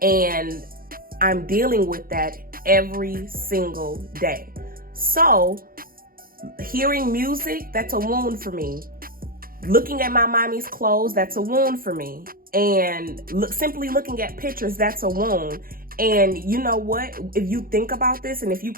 and I'm dealing with that every single day. So hearing music, that's a wound for me. Looking at my mommy's clothes, that's a wound for me. And simply looking at pictures, that's a wound. And you know what? If you think about this and if you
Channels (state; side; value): late; left; 0.42 ms